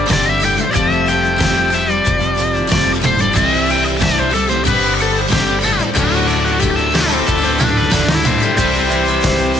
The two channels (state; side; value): normal; both; correlation 0.74